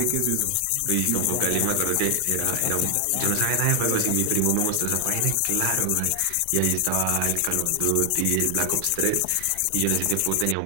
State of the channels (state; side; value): different; both; correlation 0.00